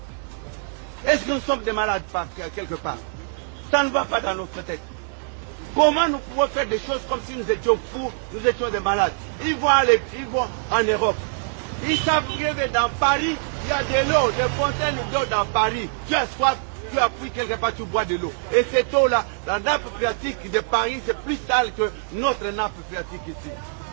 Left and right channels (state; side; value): silent; left; digital silence